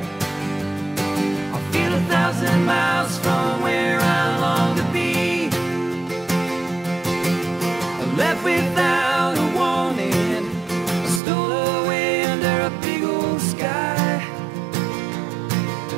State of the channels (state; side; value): drops out; left; at 11.2 s